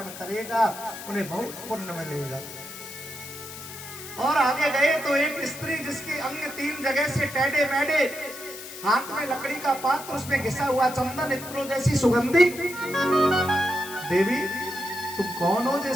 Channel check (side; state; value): left; noise; hiss, 12 dB below the sound